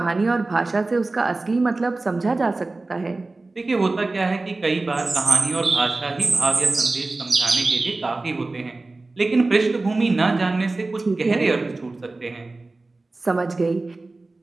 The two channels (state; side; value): quieter; left; 3.3 dB